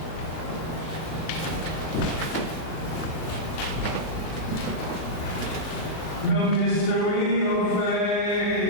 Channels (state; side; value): late; right; 38 ms